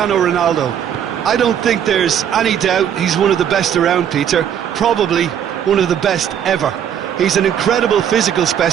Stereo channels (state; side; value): quieter; left; 9.1 dB